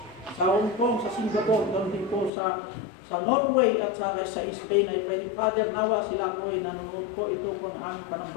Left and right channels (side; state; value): right; drops out; at 2.3 s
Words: sa Hong Kong, sa Singapore, ganun din po sa Norway at sa Spain. I pray, Father, nawa sila po ay nanonood po ito po ng aming